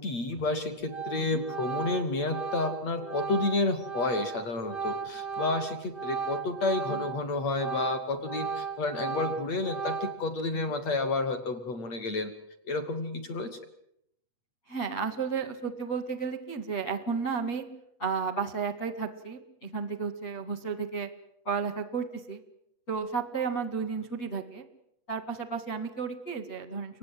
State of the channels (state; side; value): late; right; 8.3 ms